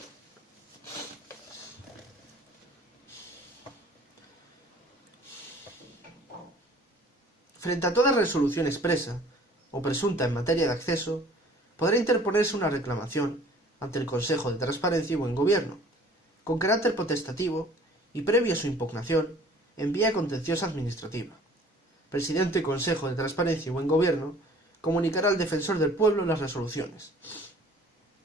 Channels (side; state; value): both; normal; correlation 0.51